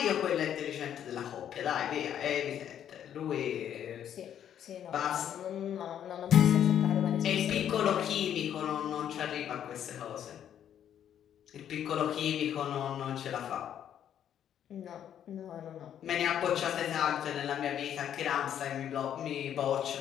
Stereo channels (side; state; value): right; quieter; 9.8 dB